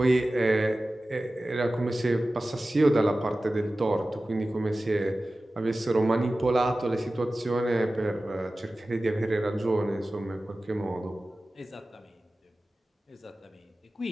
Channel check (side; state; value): both; normal; correlation 0.96